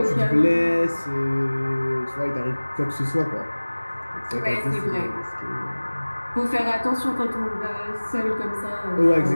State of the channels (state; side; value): inverted; both; correlation -1.00